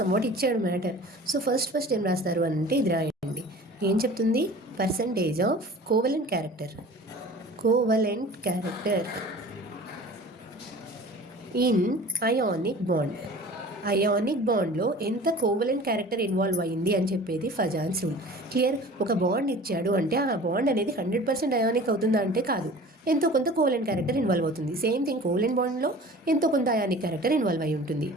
ఇచ్చాడు మ్యాటర్. సో ఫస్ట్ ఏం రాస్తారు అంటే ఇది రాయండి. ఏం చెప్తుంది? Percentage of covalent character in ionic bond. Ionic బాండ్లో ఎంత కోవలెంట్ క్యారెక్టర్ ఇన్వాల్వ్ అయ్యింది అని చెప్పేది ఫజాన్స్ రూల్. క్లియర్? ఒక బాండ్ ఇచ్చాడు అంటే ఆ బాండ్ అనేది 100% అయానిక్ అవుతుందా అంటే కాదు, ఎంతో కొంత కోవలెంట్ క్యారెక్టర్ ఇన్వాల్వ్ అవుతుంది. సేమ్ థింగ్ కోవలెంట్ బాండ్లో ఎంతో కొంత అయానిక్ క్యారెక్టర్ ఇన్వాల్వ్ అయి ఉంటుంది.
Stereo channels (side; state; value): both; normal; correlation 0.42